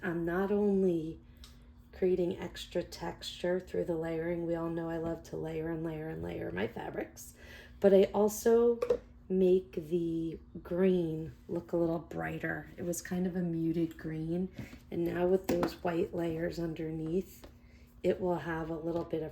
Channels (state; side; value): identical; both; correlation 1.00